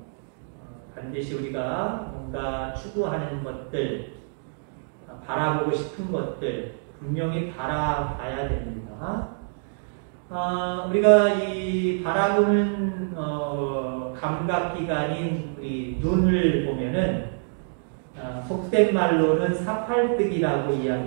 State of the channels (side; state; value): left; silent; digital silence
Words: 반드시 우리가 뭔가 추구하는 것들, 바라보고 싶은 것들 분명히 바라봐야 됩니다. 우리가 이 바라보는 감각기관인 우리 눈을 보면은 속된 말로는 사팔뜨기라고